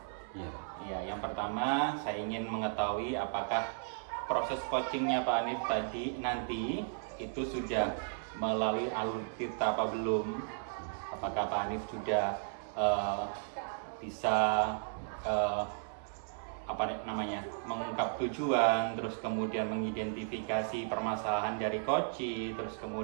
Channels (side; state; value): left; silent; 54 dB below the other